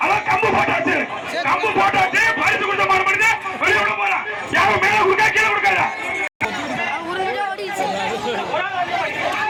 அவன் கம்பு போட்டாச்சு பரிசு கொடுத்த மாடு பண்ணிட்டு வெளியே விட போறான் யாரும் மேல கொடுக்கா கீழே கொடுக்காதா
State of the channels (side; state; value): both; identical; correlation 1.00